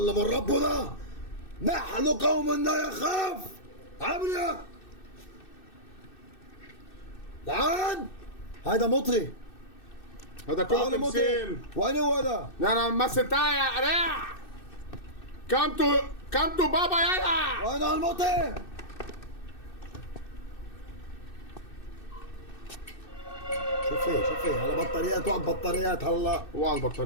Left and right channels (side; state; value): right; late; 2.6 ms